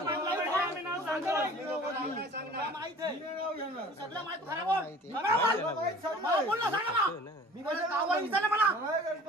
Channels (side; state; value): both; normal; correlation 0.46